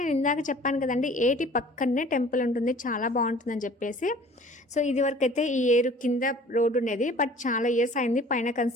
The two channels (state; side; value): normal; both; correlation 0.49